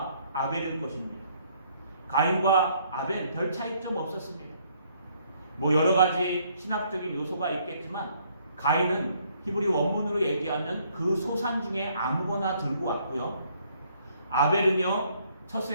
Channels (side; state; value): both; inverted; correlation -0.66